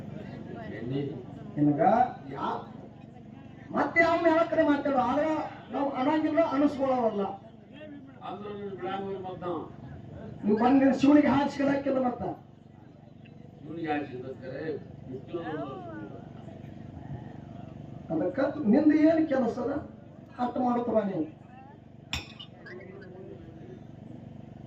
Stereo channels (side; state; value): both; identical; correlation 1.00